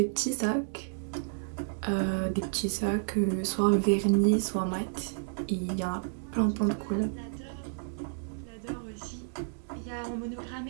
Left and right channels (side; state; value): left; silent; digital silence